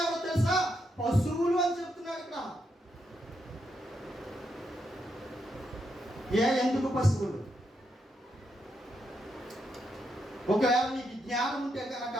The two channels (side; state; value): both; normal; correlation 0.81